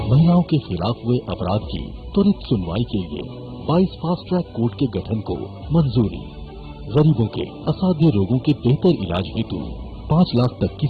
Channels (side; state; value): both; identical; correlation 1.00